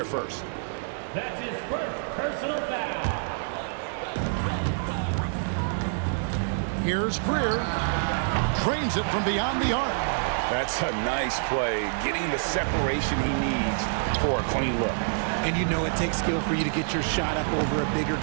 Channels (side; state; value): left; silent; 60 dB below the other